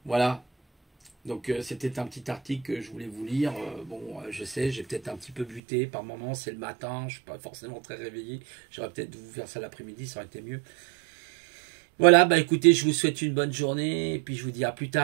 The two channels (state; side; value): drops out; left; at 5.6 s